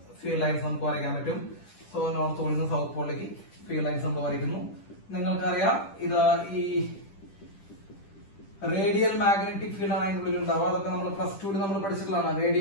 ഫീൽഡ് ലൈൻസ് നമുക്ക് വരയ്ക്കാൻ പറ്റും. സോ നോർത്ത് പോളിൽ നിന്ന് സൗത്ത് പോളിലേക്ക് ഫീൽഡ് ലൈൻസ് നമ്മൾ വരയ്ക്കുന്നു. നിങ്ങൾക്കറിയാം ഇത് ഈ റേഡിയൽ മാഗ്നറ്റിക് ഫീൽഡ് ആണ് അതിനുള്ളിൽ ഉണ്ടാവുക. അതൊക്കെ നമ്മൾ പ്ലസ് 2 നമ്മൾ പഠിച്ചിട്ടുള്ളതാണ്.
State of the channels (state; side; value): late; right; 10 ms